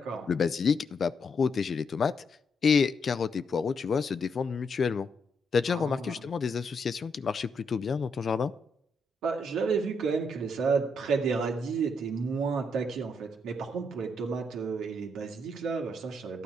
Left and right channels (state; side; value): normal; both; correlation 0.78